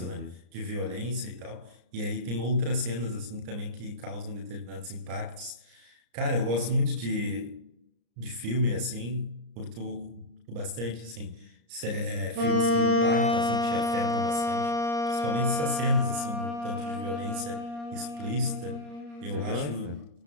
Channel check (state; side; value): late; left; 34 ms